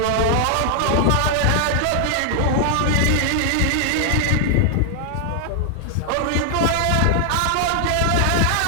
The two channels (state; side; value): different; both; correlation 0.00